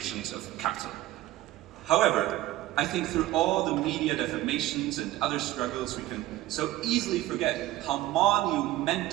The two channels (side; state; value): left; quieter; 15.8 dB